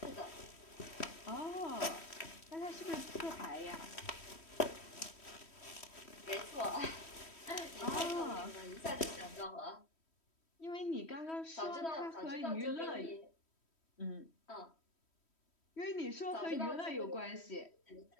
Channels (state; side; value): late; right; 3.1 ms